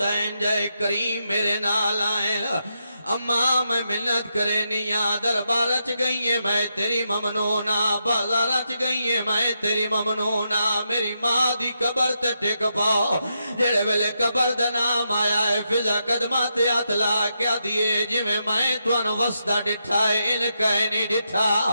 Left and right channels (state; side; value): inverted; both; correlation -0.83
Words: جے کریم میرے نال آئین اماں میں منت کرے نیا دربار رچ گئی ہے میں تیری ممنونا بازار رچ گئی ہے میں تیری ممنونا میری ماں دی قبر تے ٹک پاؤ جڑے ویلے قبر دا نام آیا ہے فضا قدمات اتلا کیا دیئے جی میں توانو وسطہ ڈٹھا ہے ان کہے نہیں